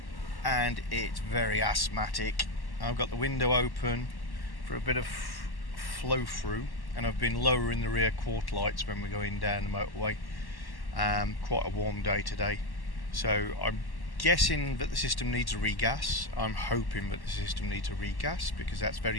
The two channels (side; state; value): right; late; 1.1 ms